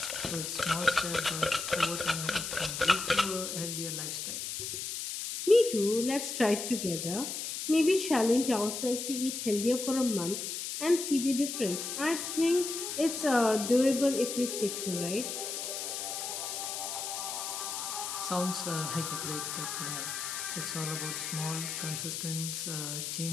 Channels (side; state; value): left; noise; hiss, 4 dB below the sound